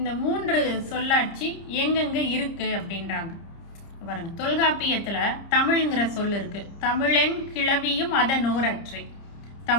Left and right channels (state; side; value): late; right; 30 ms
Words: 3 சொல்லாட்சி எங்கெங்கே இருக்குது அப்படின்றாங்க பாருங்க. தொல்காப்பியத்தில் தமிழ்ங்கிற சொல் இருக்குது. தமிழன் கிளவியும் அதனோரற்றை.